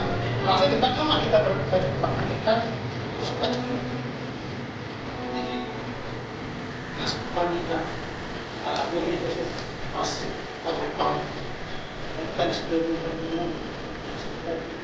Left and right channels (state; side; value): identical; both; correlation 1.00